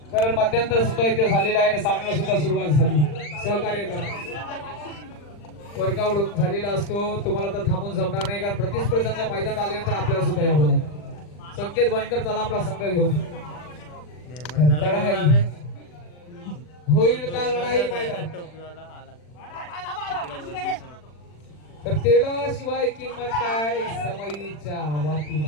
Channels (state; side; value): late; right; 40 ms